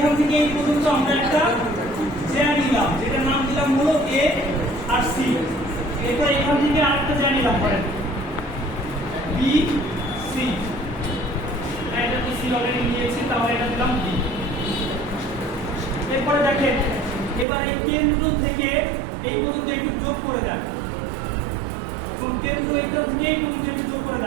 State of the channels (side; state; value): left; drops out; at 17.4 s